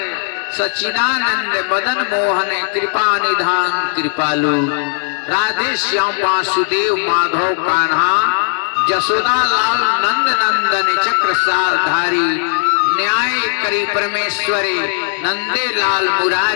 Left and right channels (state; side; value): silent; right; 57 dB below the other